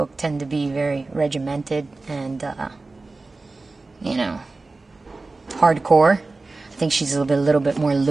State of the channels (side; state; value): left; quieter; 3.5 dB